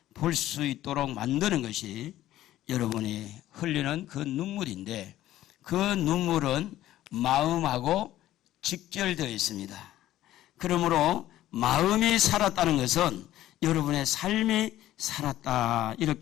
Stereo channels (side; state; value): right; quieter; 13.9 dB